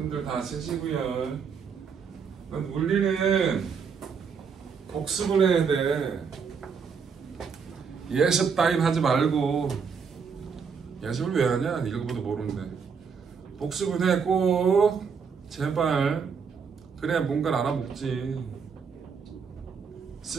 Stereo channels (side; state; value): left; quieter; 6.0 dB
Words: 다 쓰시고요. 물리는 복습을 해야 돼. 예습 따윈 하지 말고. 예습을 왜 하냐? 읽어봐도 모르는데. 복습을 해 꼭. 제발. 그래야 뭔가를 알아먹지.